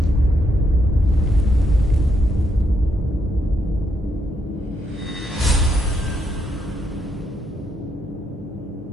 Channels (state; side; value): normal; both; correlation 0.76